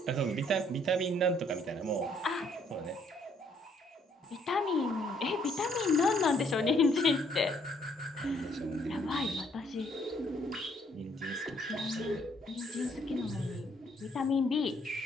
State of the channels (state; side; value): normal; both; correlation 0.66